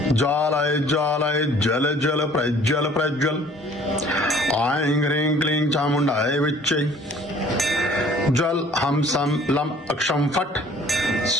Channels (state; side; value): normal; both; correlation 0.53